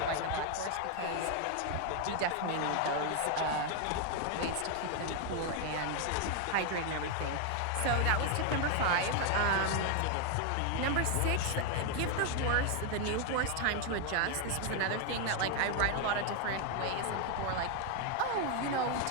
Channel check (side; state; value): both; different; correlation 0.01